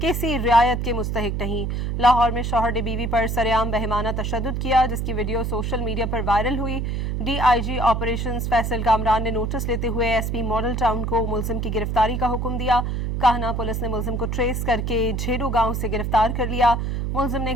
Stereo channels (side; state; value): right; noise; hum, 1 dB below the sound